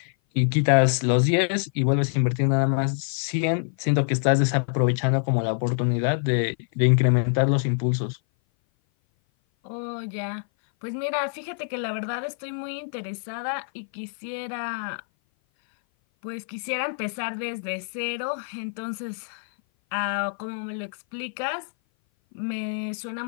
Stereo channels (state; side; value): silent; right; 57 dB below the other